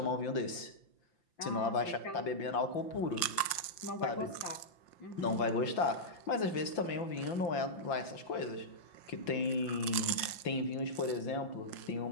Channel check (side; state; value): right; late; 5.9 ms